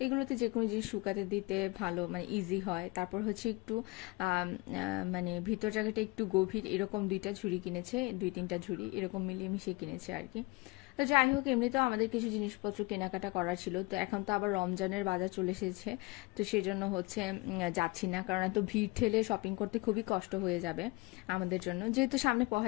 এগুলোতে যে কোনো জিনিস শুকাতে দিতে ভালো, মানে ইজি হয়। তারপর হচ্ছে একটু মানে ভিতর জায়গাটা একটু গভীর, এরকম দুইটা ঝুড়ি কিনেছে, 2-3টা ঝুড়ি এরকম মিলিয়ে মিশিয়ে কিনেছে আর কি। তো যাই হোক, এমনিতেও আমাদের কিছু জিনিসপত্র কেনাকাটা করার ছিল। তো এখন তো আবার রমজানের বাজার চলে এসেছে, তো সেজন্য হচ্ছে যাচ্ছি না, কারণ এত ভিড় ঠেলে শপিং করতে খুবই কষ্ট হয়ে যাবে আমাদের জন্য। যেহেতু সামনে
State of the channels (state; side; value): quieter; right; 24.7 dB